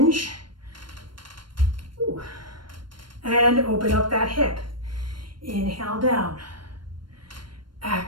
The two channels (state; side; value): late; left; 0.72 ms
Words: Ooh. And open up that hip. Inhale down.